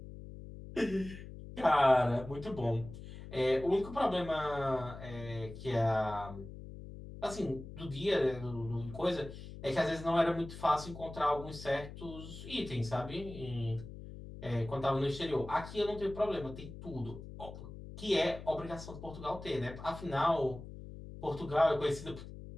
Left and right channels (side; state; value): left; noise; hum, 12 dB below the sound